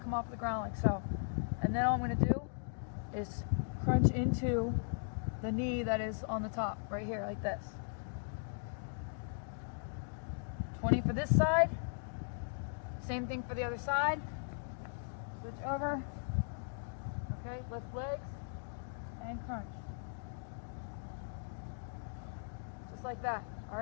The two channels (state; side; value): silent; right; digital silence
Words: come off the ground like so. And then all I'm going to do is crunch into the knee that is on the top, right here, like this. 20 for this side. Same thing for the other side. Switch over. Okay, lift legs and crunch. Just like that, all